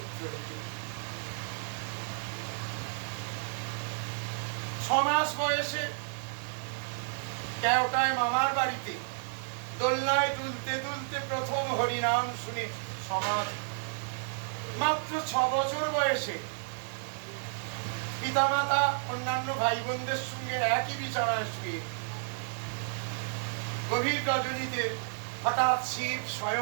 6 মাস বয়সে কেওটায় মামার বাড়িতে দোলনায় দুলতে দুলতে প্রথম হরিনাম শুনে সমাজ। মাত্র 6 বছর বয়সে পিতামাতা অন্যান্য ভাই বোনদের সঙ্গে একই বিছানায় শুয়ে গভীর রজনীতে হঠাৎ শিব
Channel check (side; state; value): left; silent; 55 dB below the other